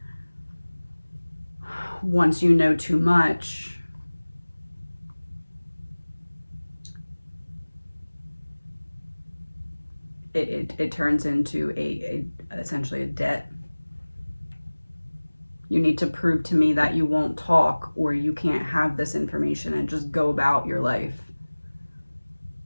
once you know too much, it turns into essentially a debt. You need to prove to me that you won't talk, or you can't have this information and just go about your life.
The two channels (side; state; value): both; inverted; correlation -1.00